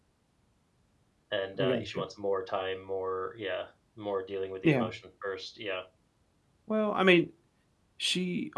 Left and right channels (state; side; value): identical; both; correlation 1.00